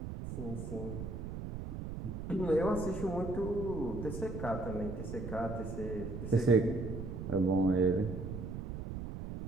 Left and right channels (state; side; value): noise; right; rumble, 6 dB below the sound